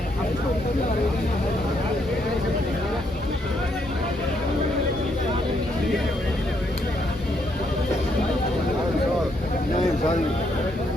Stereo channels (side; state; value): both; normal; correlation 0.75